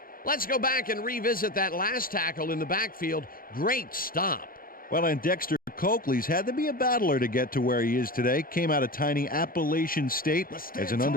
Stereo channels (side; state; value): right; late; 0.42 ms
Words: Let's go back and revisit that last tackle in the backfield. Great stop. Well, and Dexter Coakley's had to be a battler to get to where he is today. Came out of tiny Appalachian State as an